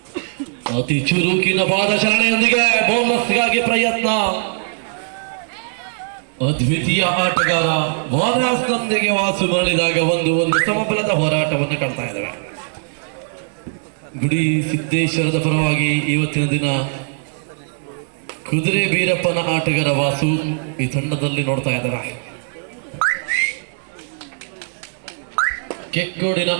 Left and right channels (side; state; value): left; silent; 66 dB below the other